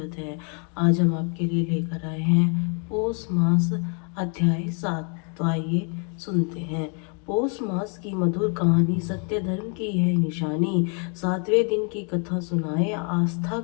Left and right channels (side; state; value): right; quieter; 39.2 dB